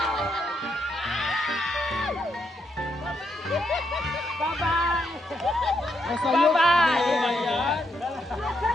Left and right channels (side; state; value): both; normal; correlation 0.78